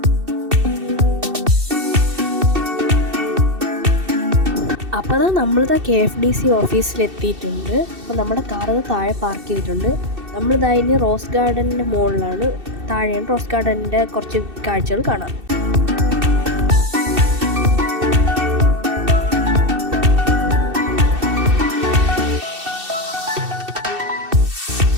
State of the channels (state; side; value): late; left; 2.7 ms